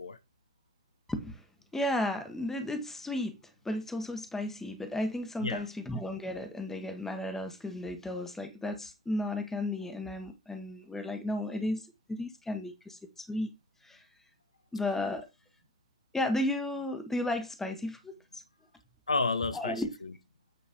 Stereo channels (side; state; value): both; normal; correlation 0.48